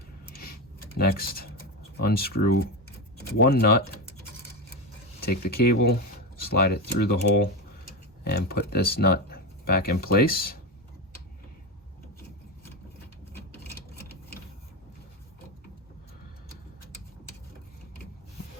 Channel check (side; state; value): both; normal; correlation 0.15